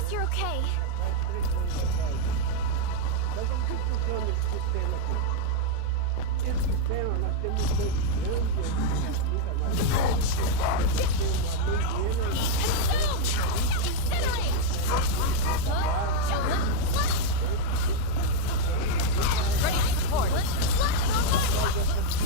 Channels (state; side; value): different; both; correlation 0.00